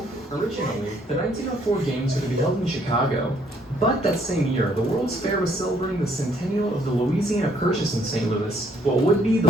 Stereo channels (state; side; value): normal; both; correlation 0.67